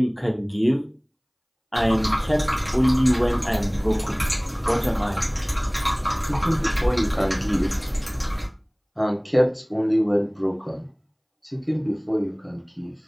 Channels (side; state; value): both; identical; correlation 1.00